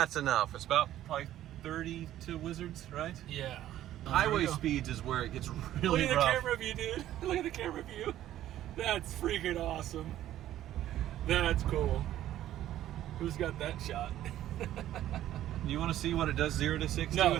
enough. It's about probably 30 to Wizards, right? Yeah. Highway speeds is where it gets really Look at rough. the camera view, dude. Look at the camera view. That's freaking awesome. That's cool. Who's got that shot? You want to see what it does 0 to 60 No.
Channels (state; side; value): quieter; left; 12.9 dB